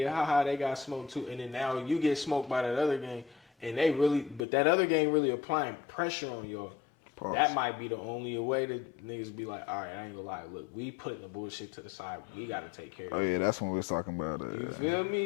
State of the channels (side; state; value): right; drops out; at 4.5 s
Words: haha, they got smoked too. And then now you get smoked by that other gang, and that other gang really applying pressure on y'all, Pause. That might be the only way that niggas be like, all right, I ain't gonna lie. Look, we putting the bullshit to the side. We got to take care of it. Oh yeah, that's when we was talking about. You feel